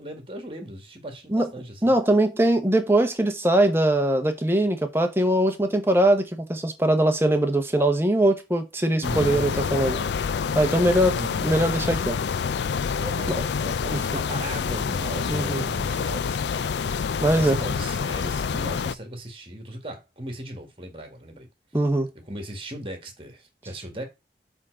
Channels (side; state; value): both; normal; correlation 0.66